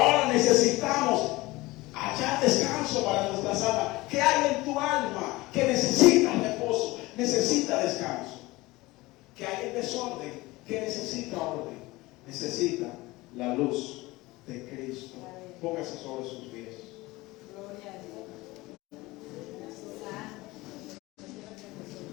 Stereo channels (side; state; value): right; quieter; 20.6 dB